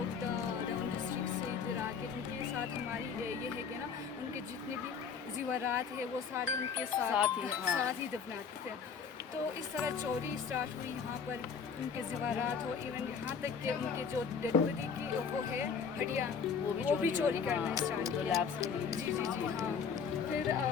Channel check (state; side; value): quieter; right; 6.2 dB